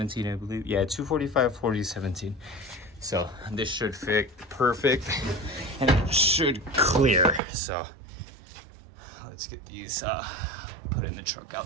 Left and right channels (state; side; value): drops out; left; at 7.4 s